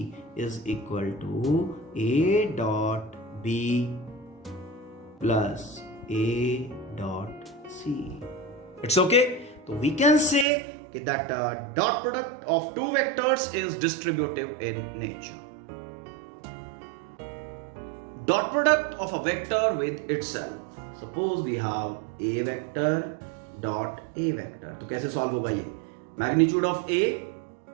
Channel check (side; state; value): left; drops out; at 10.5 s